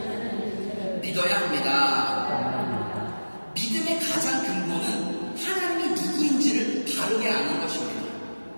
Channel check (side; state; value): both; inverted; correlation -1.00